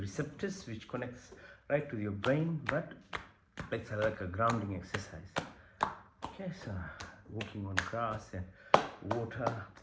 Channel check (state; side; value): identical; both; correlation 1.00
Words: which connects right to your brain, but like a grounding exercise. Okay, so walking on grass and water,